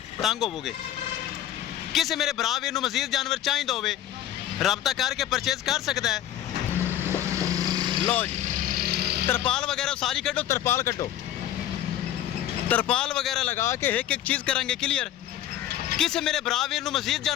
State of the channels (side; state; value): right; quieter; 11.8 dB